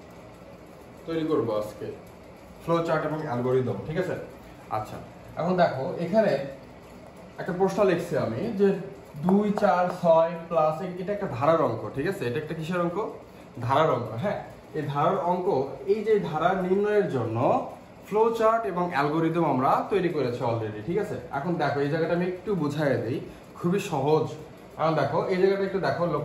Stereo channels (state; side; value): identical; both; correlation 1.00